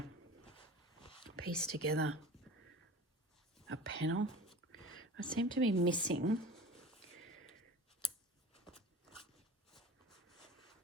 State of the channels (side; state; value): both; normal; correlation 0.39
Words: piece together a panel. I seem to be missing